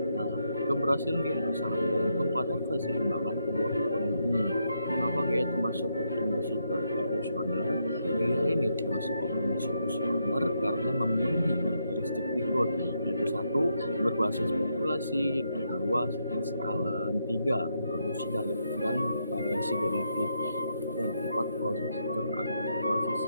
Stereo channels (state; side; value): inverted; both; correlation -0.79